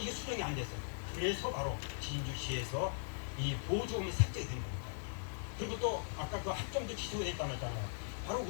수정이 안 됐어요. 그래서 바로 진주시에서 이 보조금이 삭제가 된 겁니다. 그리고 또 아까 그 합정도 취소가 됐다고 했잖아요. 바로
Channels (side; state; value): right; silent; 51 dB below the other